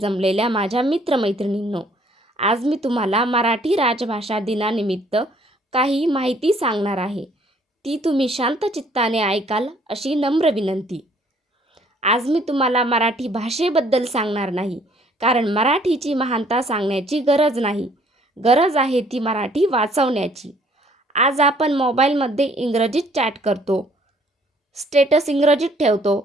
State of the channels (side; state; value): both; normal; correlation 0.61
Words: माझ्या मित्रमैत्रिणींनो, आज मी तुम्हाला मराठी राजभाषा दिनानिमित्त काही माहिती सांगणार आहे. ती तुम्ही शांत चित्ताने ऐकाल अशी नम्र विनंती. आज मी तुम्हाला मराठी भाषेबद्दल सांगणार नाही, कारण मराठीची महानता सांगण्याची गरज नाही. गरज आहे ती मराठी वाचवण्याची. आज आपण मोबाईलमध्ये इंग्रजीत चॅट करतो, स्टेटस इंग्रजीत